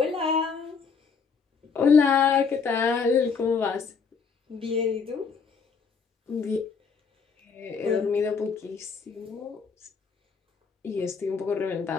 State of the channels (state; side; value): quieter; right; 5.5 dB